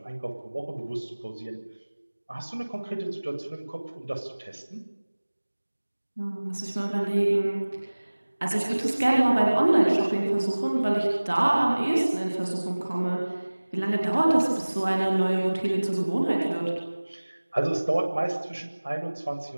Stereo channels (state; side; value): inverted; both; correlation -1.00